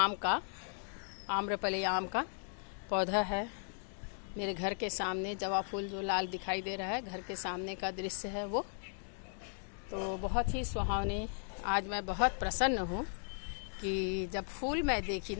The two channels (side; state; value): right; silent; 53 dB below the other